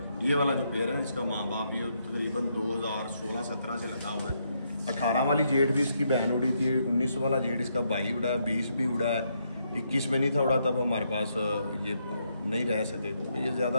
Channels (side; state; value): both; inverted; correlation -0.77